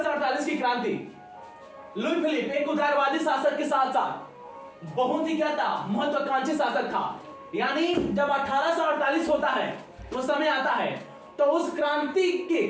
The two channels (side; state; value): both; identical; correlation 1.00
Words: की क्रांति, लुई फिलिप एक उदारवादी शासक के साथ साथ बहुत ही क्या था, महत्वाकांक्षी शासक था। यानी जब 1848 होता है वो समय आता है, तो उस क्रांति के